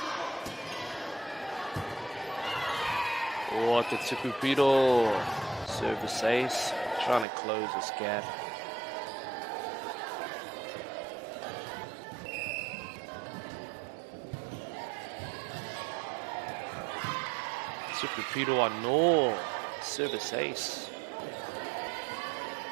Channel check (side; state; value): left; drops out; at 7.2 s